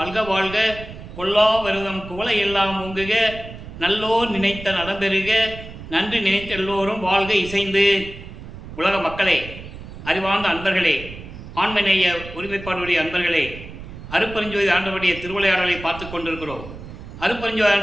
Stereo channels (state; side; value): noise; right; rumble, 13 dB below the sound